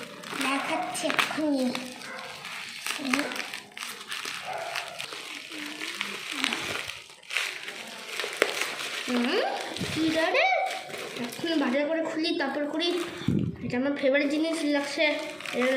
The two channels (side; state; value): both; identical; correlation 1.00